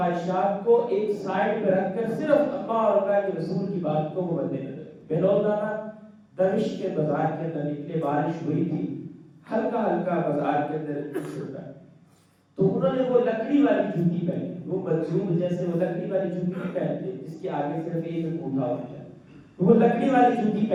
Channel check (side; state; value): both; identical; correlation 1.00